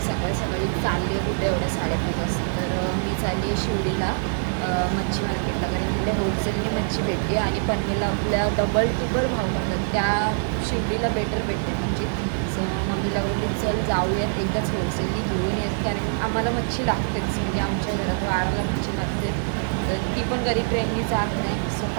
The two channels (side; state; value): left; silent; 57 dB below the other